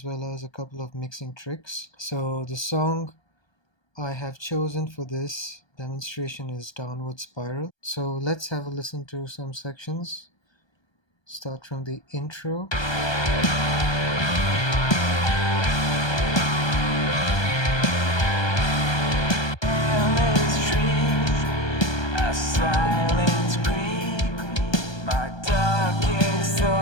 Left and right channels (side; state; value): right; late; 1.3 ms